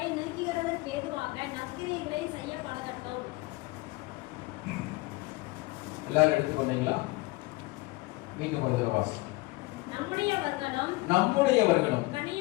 நீக்குகிறதற்கு ஏதுவாக நற்கிரியைகளை செய்ய பழகட்டும். எல்லாரும் எடுத்துக்கொண்டீங்களா? மீண்டும் ஒரு வாசம். நம்முடையவர்களும்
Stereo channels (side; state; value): right; quieter; 22.5 dB